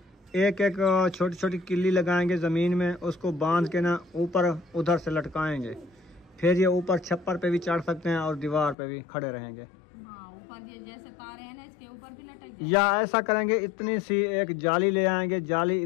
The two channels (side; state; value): right; drops out; at 8.8 s